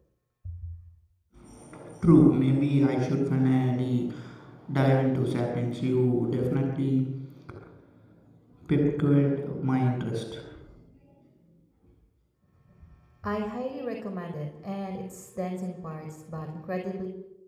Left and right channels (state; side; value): identical; both; correlation 1.00